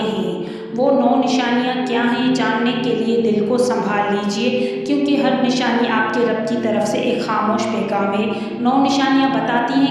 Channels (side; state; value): both; identical; correlation 1.00